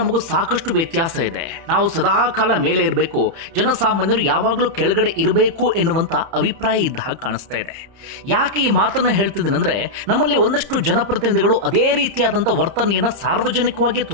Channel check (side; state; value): left; late; 30 ms